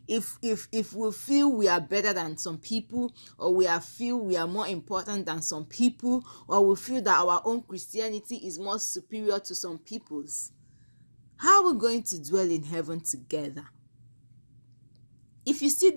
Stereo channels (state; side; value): inverted; both; correlation -1.00